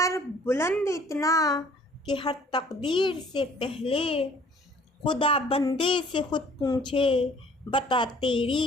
बुलंद इतना कि हर तकदीर से पहले, खुदा बंदे से खुद पूछे, बता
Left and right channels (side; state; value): both; normal; correlation 0.55